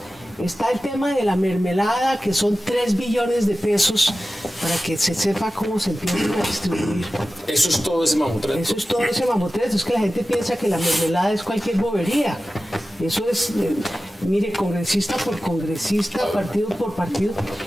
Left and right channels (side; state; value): both; normal; correlation 0.95